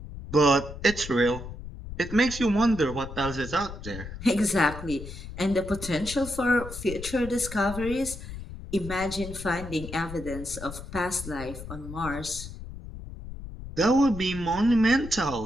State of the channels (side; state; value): left; noise; rumble, 11 dB below the sound